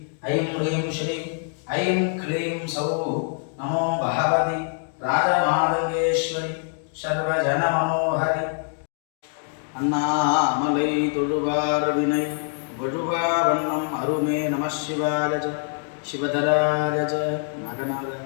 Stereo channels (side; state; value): right; silent; 58 dB below the other